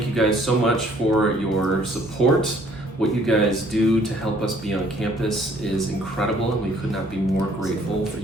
you guys so much for your support. What you guys do to help us be on campus is incredible, and we could not be more grateful for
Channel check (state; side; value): normal; both; correlation 0.60